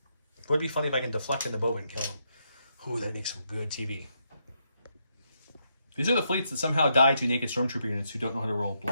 would be funny if I can deflect into Boba and kill him. Ooh, that'd make some good TV. These are the fleets that somehow die to naked stormtrooper units who don't know how to roll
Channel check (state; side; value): inverted; both; correlation -0.79